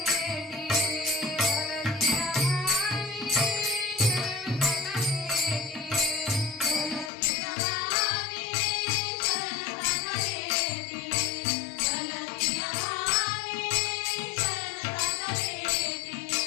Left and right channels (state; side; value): drops out; right; at 7.1 s